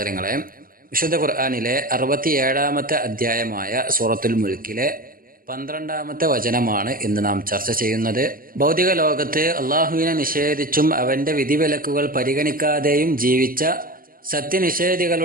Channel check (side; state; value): left; late; 0.41 ms